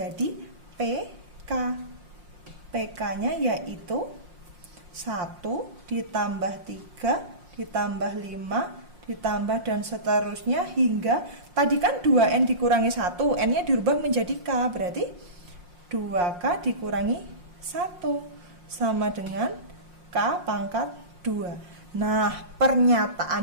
PK. PK-nya yaitu 1 ditambah 3 ditambah 5 ditambah dan seterusnya hingga tadi kan 2N dikurangi 1, N-nya dirubah menjadi K, berarti 2K dikurangi 1 sama dengan K pangkat 2. Nah,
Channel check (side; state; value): left; late; 5.6 ms